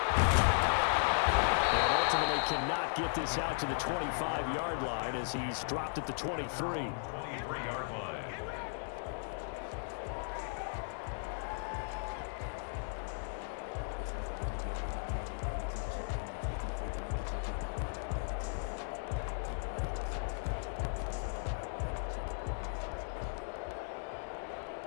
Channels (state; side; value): silent; right; digital silence